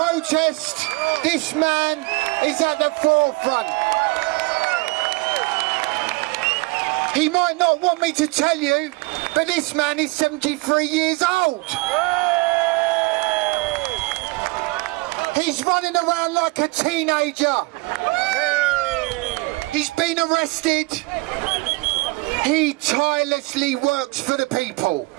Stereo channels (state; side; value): quieter; left; 24.8 dB